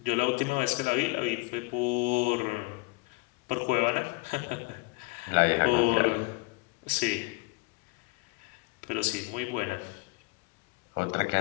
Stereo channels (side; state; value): right; quieter; 25.3 dB